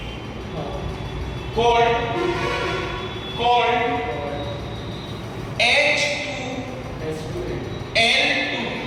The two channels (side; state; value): both; identical; correlation 1.00